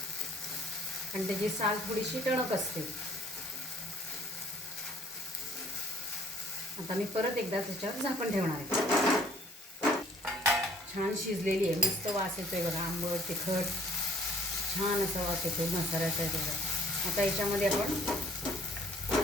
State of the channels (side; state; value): both; normal; correlation 0.57